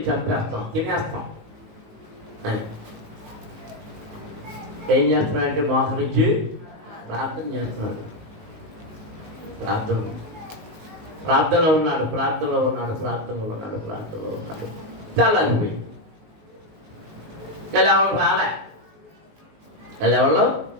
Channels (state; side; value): late; left; 19 ms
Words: చంపేస్తాం, తినేస్తాం అని. ఏం చేస్తున్నాడంటే మోకరించి ప్రార్థన చేస్తున్నాడు. ప్రార్థనలో ఉన్నాడు. తెల్లారిపోయి ఎవరో